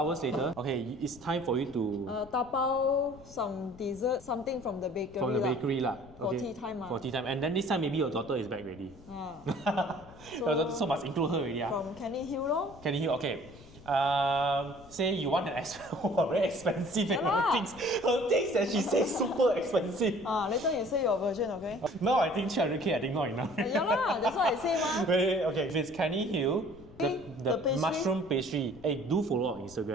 later, okay, it's time for you to tapao some dessert, something from the bakery. For tea time. For tea time. And then this time maybe your daughter is back already. So must include her already. From Canning Hill lor. Canning Hill, okay. Say you want an very expensive and her things that she says super expensive. Later you say your version, okay? No, I think 300k I think not enough. Yeah, that's what I say Okay, if it's Canning Hill, the mushroom pastry. Hey, do follow on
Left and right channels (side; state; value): left; noise; rumble, 21 dB below the sound